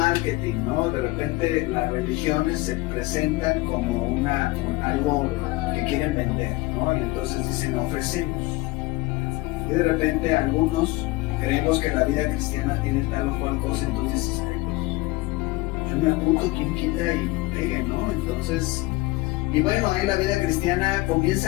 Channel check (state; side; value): quieter; right; 21.1 dB